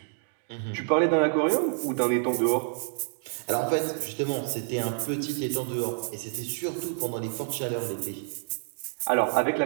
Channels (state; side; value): silent; left; digital silence